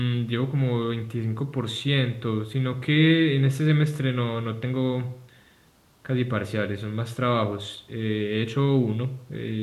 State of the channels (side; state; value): both; identical; correlation 1.00